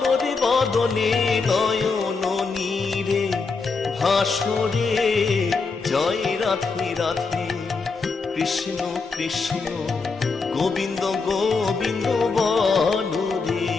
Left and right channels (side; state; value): right; quieter; 4.5 dB